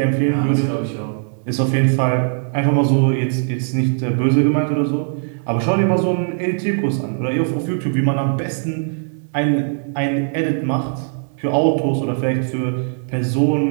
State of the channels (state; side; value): silent; left; 66 dB below the other